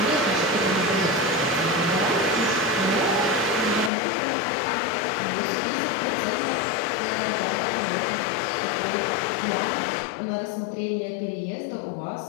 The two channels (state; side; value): drops out; right; at 3.9 s